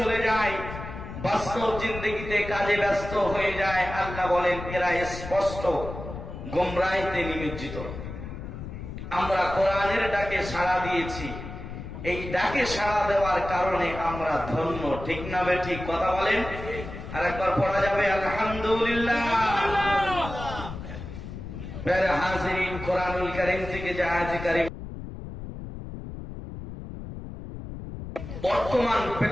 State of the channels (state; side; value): noise; left; rumble, 10 dB below the sound